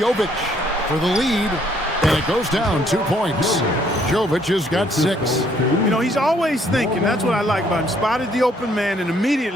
for the lead. And it goes down 2 points. Jovic has got 6. You know, he's always thinking. That's what I like about him. Spotted the open man and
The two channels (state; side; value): normal; both; correlation 0.66